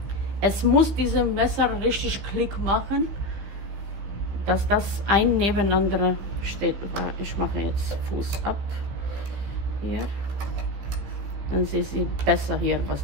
Es muss diesem Messer richtig Klick machen, dass das ein nebeneinander steht. Ich mache jetzt Fuß ab. Hier. Dann sehen Sie besser hier,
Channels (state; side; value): late; left; 15 ms